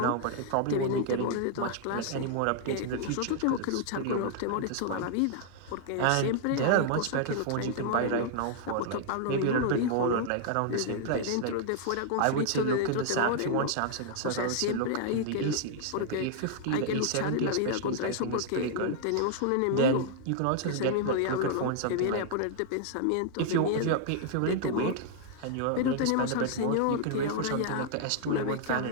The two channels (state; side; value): different; both; correlation -0.01